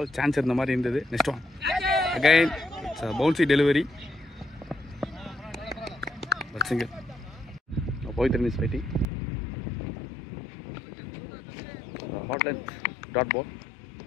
chance இருந்த மாதிரி இருந்தது. Next one. Again, it's a bouncy delivery. But single. Now Pavitran is fighting. Hot length, dot ball.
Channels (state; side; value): drops out; right; at 9.1 s